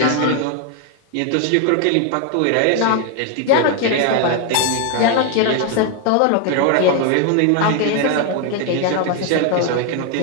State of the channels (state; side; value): different; both; correlation 0.01